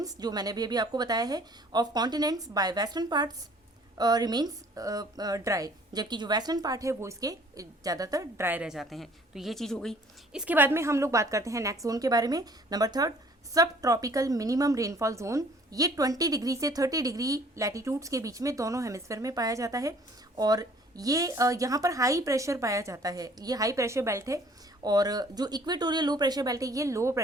जो मैंने भी अभी आपको बताया है, of continents bye western parts remains dry, जबकि जो वेस्टर्न पार्ट है वो इसके ज़्यादातर ड्राई रह जाते हैं। तो ये चीज़ हो गई। इसके बाद में हम लोग बात करते हैं नेक्स्ट जोन के बारे में, नंबर 3, सब ट्रॉपिकल मिनिमम रेनफॉल जोन। ये 20 डिग्री से 30 डिग्री लैटिट्यूड्स के बीच में दोनों हेमिस्फीयर में पाया जाता है। और ये यहाँ पर हाई प्रेशर पाया जाता है, ये हाई प्रेशर बेल्ट है। और जो इक्वेटोरियल लो प्रेशर बेल्ट है ये लो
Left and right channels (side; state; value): both; normal; correlation 0.55